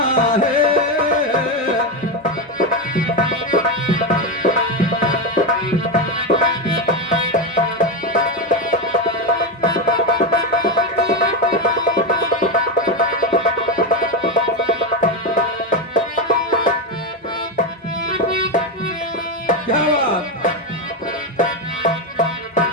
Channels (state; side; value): normal; both; correlation 0.10